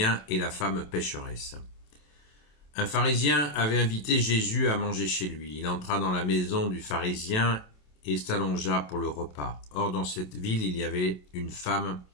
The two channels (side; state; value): right; late; 27 ms